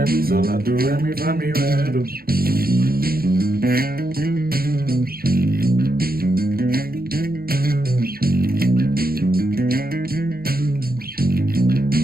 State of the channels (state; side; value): late; left; 0.44 ms